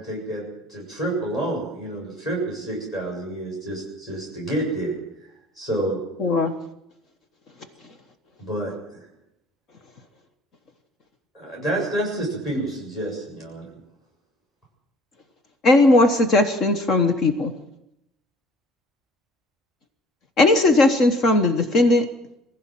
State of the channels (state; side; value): normal; both; correlation 0.52